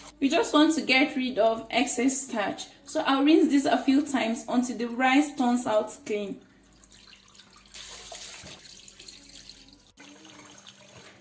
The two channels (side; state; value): both; identical; correlation 1.00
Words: We just want to get rid of excess starch, so I'll rinse this a few times until the rice turns out clean.